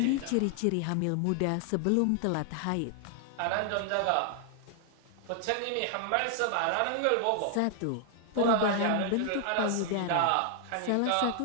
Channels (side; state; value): both; different; correlation 0.00